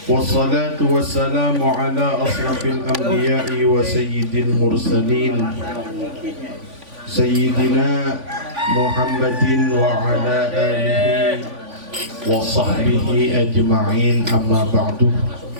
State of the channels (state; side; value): late; left; 3.5 ms